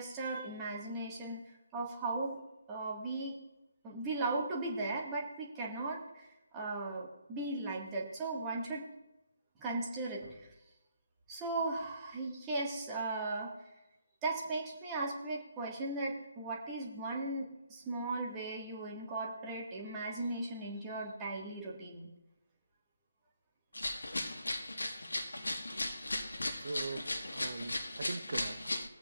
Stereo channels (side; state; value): both; inverted; correlation -0.67